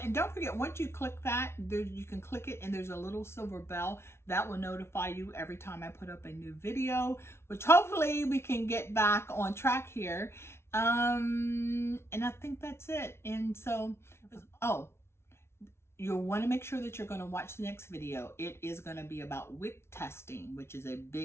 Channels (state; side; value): late; right; 0.12 ms